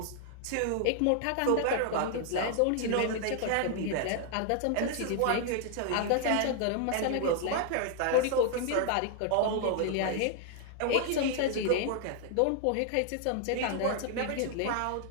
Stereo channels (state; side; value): different; both; correlation 0.00